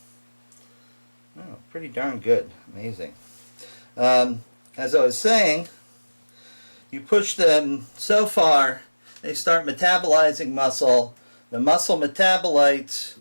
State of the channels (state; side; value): inverted; both; correlation -1.00